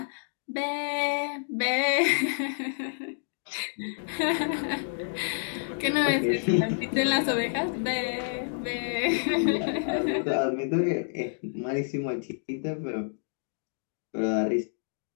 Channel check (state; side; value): silent; right; digital silence